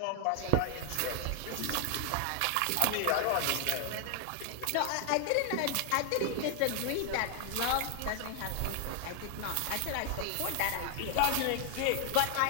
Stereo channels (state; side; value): different; both; correlation 0.00